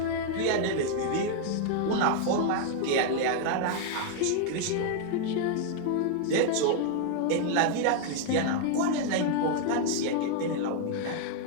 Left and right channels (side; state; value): both; different; correlation 0.00